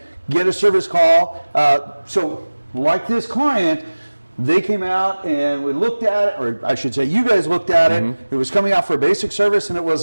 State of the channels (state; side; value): inverted; both; correlation -1.00